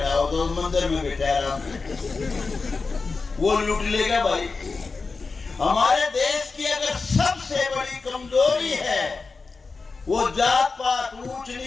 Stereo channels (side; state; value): right; quieter; 4.3 dB